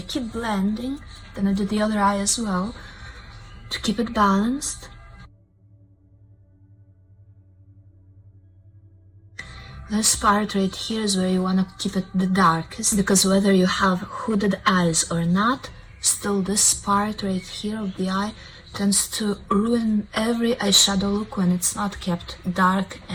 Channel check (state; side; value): identical; both; correlation 1.00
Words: blending, then I do the other eye as well to keep it balanced. This part right here is where you want to keep it the darkest, because whether you have hooded eyes or not, still this part right here of the eye tends to ruin every eyeshadow look when it's not kept dark